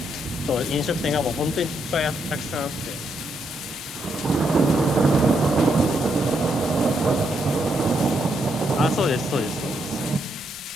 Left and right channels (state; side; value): normal; both; correlation 0.78